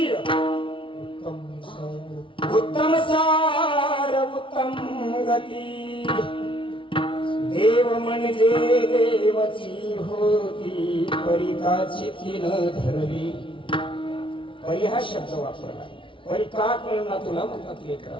उत्तम सार उत्तम गती. देव म्हणजे देवाची होती. परिकाची तीन धरली. परी हा शब्द वापरला. परी का कळला तुला म्हणतात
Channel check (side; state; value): right; late; 0.25 ms